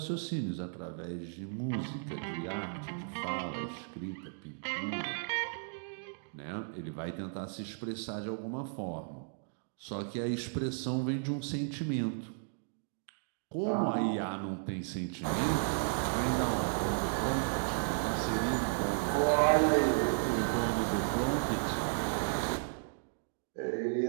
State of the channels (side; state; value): left; silent; digital silence